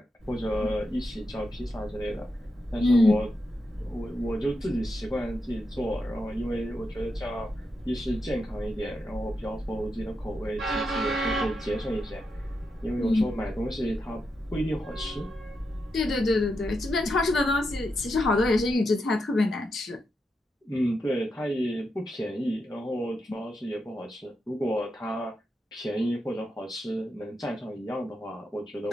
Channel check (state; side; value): normal; both; correlation 0.86